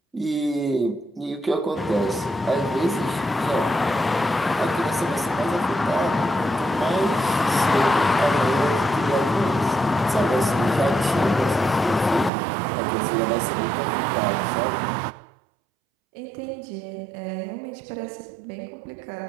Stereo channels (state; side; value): drops out; left; at 12.3 s